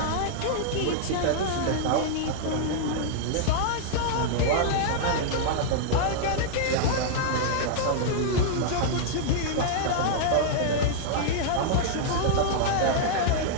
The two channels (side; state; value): both; different; correlation -0.01